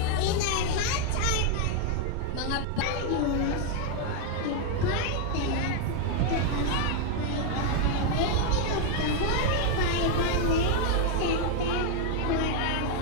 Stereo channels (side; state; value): both; different; correlation 0.01